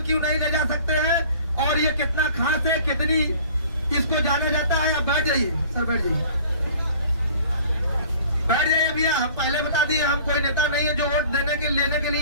क्यों नहीं ले जा सकते हैं और ये कितना खास है, कितनी इसको जाना जाता है। आप बैठ जाइए सर, बैठ जाइए, बैठ जाइए भैया। हम पहले बता दिए, हम कोई नेता नहीं है जो वोट लेने के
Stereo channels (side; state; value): both; inverted; correlation -0.49